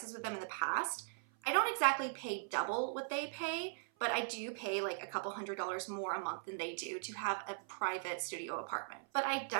with them in the past. I don't exactly pay double what they pay, but I do pay like a couple $100s more a month than they do to have a private studio apartment. But I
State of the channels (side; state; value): left; silent; 51 dB below the other